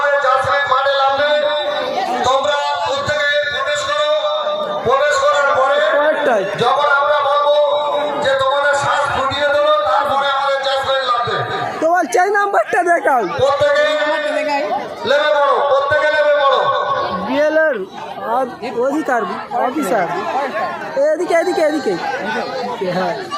জাসমিন মাঠে নামবে, তোমরা প্রত্যেকে প্রবেশ করো। প্রবেশ করার পরে পরেরটাই যখন আমরা বলবো যে তোমাদের শ্বাস ফুটিয়ে দেবো, তারপরে আমাদের জাসমিন নামবে। তোমার চাই নাম্বারটা দেখাও। প্রত্যেকে লেবে পড়ো, প্রত্যেকে লেবে পড়ো। বিএলএর অধিকার অফিসার এদিকে এদিকে এদিকে। হ্যাঁ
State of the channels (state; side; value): identical; both; correlation 1.00